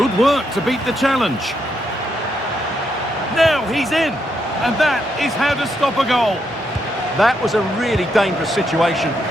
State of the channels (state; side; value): normal; both; correlation 0.79